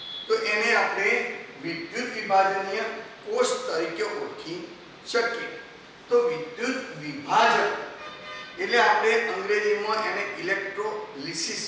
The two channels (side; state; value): both; identical; correlation 1.00